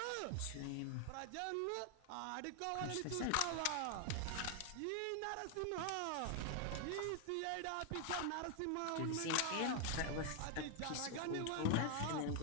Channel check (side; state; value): both; different; correlation 0.00